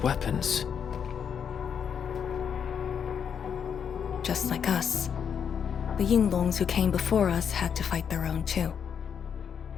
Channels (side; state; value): right; quieter; 7.5 dB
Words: weapons. Just like us. The Yinglongs who came before us had to fight their own too.